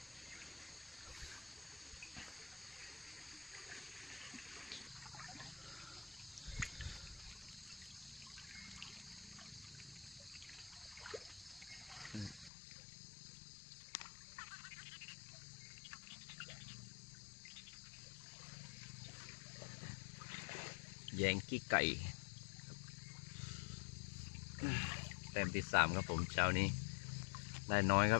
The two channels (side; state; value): right; drops out; at 12.5 s